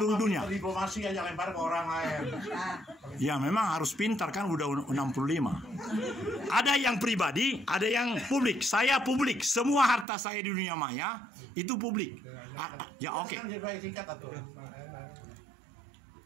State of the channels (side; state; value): left; drops out; at 10.1 s